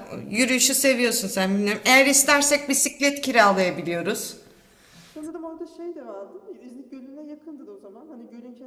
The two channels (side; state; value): both; identical; correlation 1.00